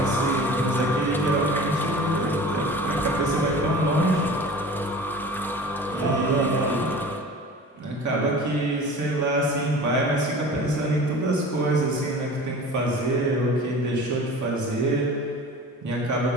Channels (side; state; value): both; normal; correlation 0.39